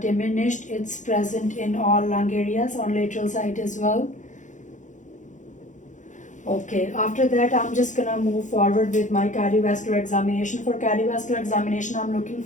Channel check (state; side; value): late; right; 0.36 ms